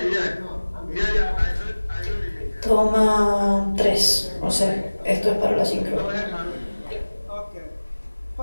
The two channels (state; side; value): inverted; both; correlation -1.00